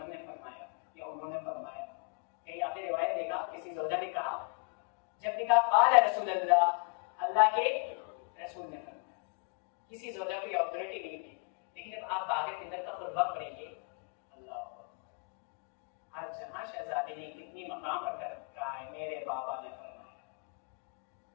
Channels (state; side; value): quieter; right; 34.5 dB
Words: ने फरमाया या उन्होंने फरमाया। कहीं आपने रिवायत देखा किसी ज़ौजा ने कहा, जब ने कहा क़ाल रसूलुल्लाह, अल्लाह के रसूल ने फरमाया। किसी ज़ौजा को ऑथोरिटी नहीं थी। लेकिन जब आप बाग़े फ़िदर का खुतबा पढ़ेंगे, अल्लाह हर जहां शहजादी ने कितनी मकाम पर कर रखा है, मेरे बाबा ने फरमाया।